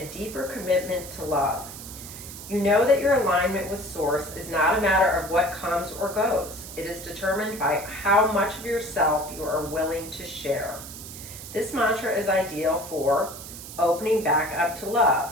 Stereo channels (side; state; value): right; noise; hiss, 12 dB below the sound